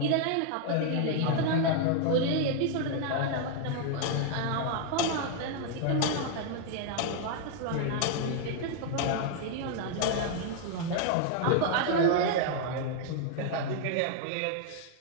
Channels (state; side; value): different; both; correlation 0.00